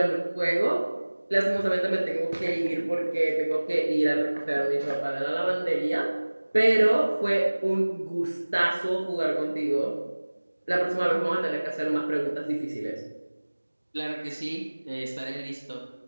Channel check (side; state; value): both; inverted; correlation -1.00